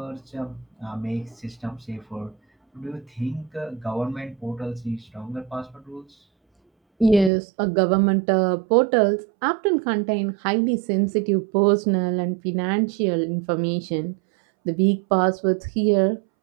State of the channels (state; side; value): drops out; left; at 7.3 s